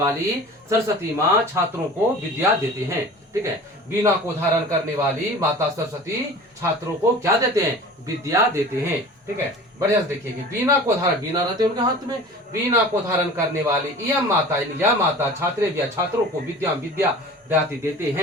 सरस्वती माँ छात्रों को विद्या देते हैं। ठीक है, वीणा को धारण करने वाली माता सरस्वती छात्रों को क्या देते हैं, विद्या देते हैं। ठीक है, बढ़िया से देखिए, वीणा को धारण, वीणा रहते हैं उनके हाथ में, वीणा को धारण करने वाली यह माता, यानी यह माता छात्रेभ्यः छात्रों को विद्या दाति देते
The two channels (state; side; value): normal; both; correlation 0.40